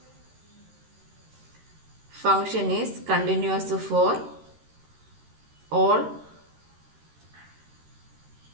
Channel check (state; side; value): late; left; 13 ms